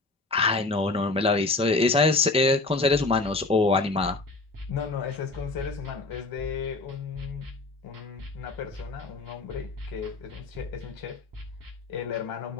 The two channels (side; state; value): right; quieter; 3.4 dB